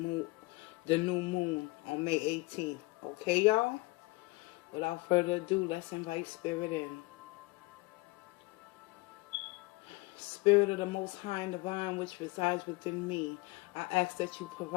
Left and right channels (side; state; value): right; quieter; 23.3 dB